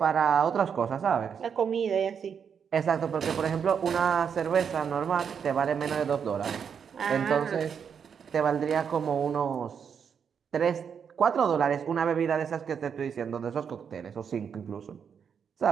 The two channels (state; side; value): quieter; left; 7.1 dB